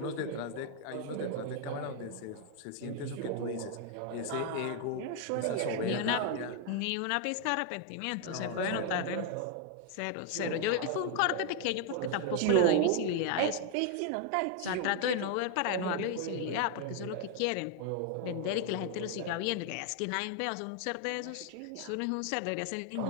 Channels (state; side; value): different; both; correlation 0.00